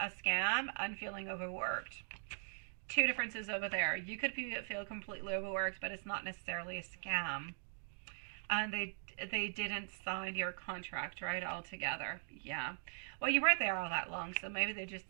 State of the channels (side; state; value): left; silent; digital silence